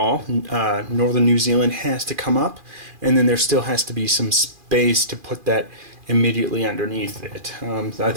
Northern New Zealand has to come up, and then there still has to be some space to put that immediately underneath it. I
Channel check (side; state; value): left; late; 2.4 ms